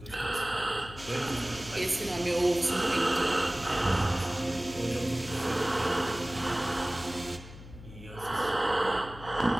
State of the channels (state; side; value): noise; left; hum, 16 dB below the sound